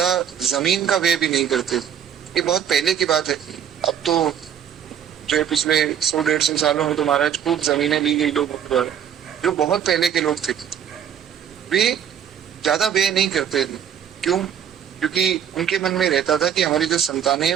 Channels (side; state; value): left; quieter; 8.9 dB